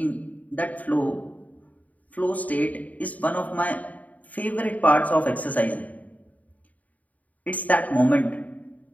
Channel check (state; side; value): late; right; 0.073 ms